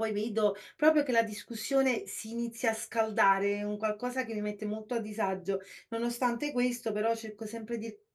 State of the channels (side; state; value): both; identical; correlation 1.00